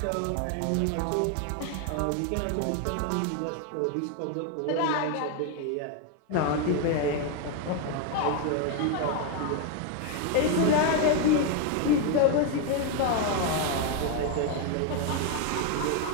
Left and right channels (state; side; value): different; both; correlation 0.01